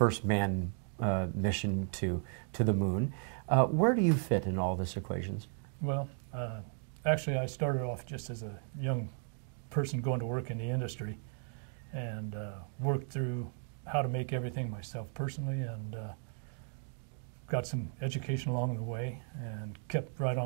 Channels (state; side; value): silent; left; 54 dB below the other